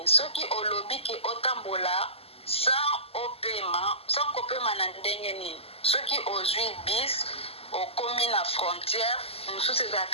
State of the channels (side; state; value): right; late; 0.29 ms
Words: soki olobi ke otambola sans kopema na ndenge nini soki ozwi bis okomi na frontière mosusu